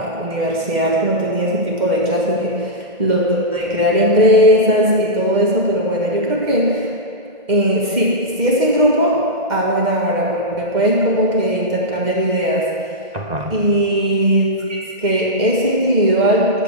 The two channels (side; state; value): left; late; 2.1 ms